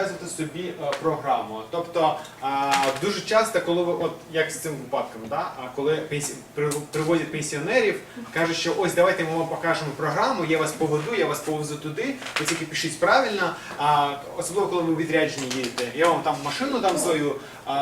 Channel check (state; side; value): identical; both; correlation 1.00